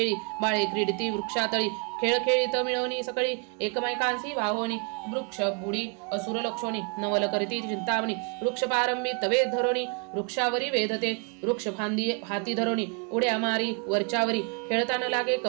बाळे क्रीडिती वृक्षातळी खेळ खेळीत मिळवणी सकळी एकमेकांसी वाहोनी वृक्ष बुडी असुर लक्षोणी नवल करीती चिंतामणी वृक्ष पारंबी तवे धरोणी वृक्षावरी वेधते वृक्ष फांदी हाती धरोणी उड्या मारी वरच्यावरी खेळताना लागे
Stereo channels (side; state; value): left; quieter; 35.8 dB